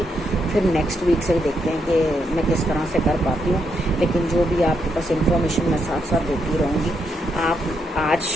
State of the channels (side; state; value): both; normal; correlation 0.79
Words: फिर नेक्स्ट वीक से ही देखते हैं कि मैं किस तरह से कर पाती हूँ। लेकिन जो भी आपके पास इन्फॉर्मेशन मैं साथ साथ देती रहूँगी। आप आज